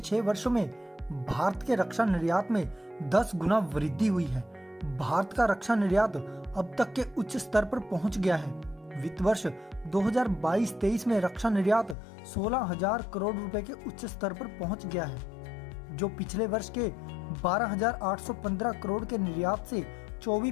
वर्षों में भारत के रक्षा निर्यात में 10 गुना वृद्धि हुई है। भारत का रक्षा निर्यात अब तक के उच्च स्तर पर पहुंच गया है। वित्त वर्ष 2022-23 में रक्षा निर्यात 16,000 करोड़ रुपए के उच्च स्तर पर पहुंच गया है, जो पिछले वर्ष के 12,815 करोड़ के निर्यात से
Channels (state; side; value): drops out; right; at 12.0 s